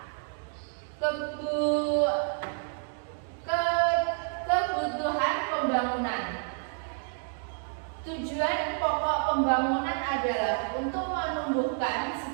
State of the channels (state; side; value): silent; left; 58 dB below the other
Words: kebutuhan pembangunan. Tujuan pokok pembangunan adalah untuk menumbuhkan